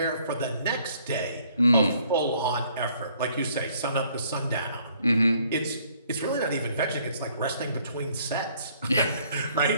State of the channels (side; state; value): both; inverted; correlation -0.62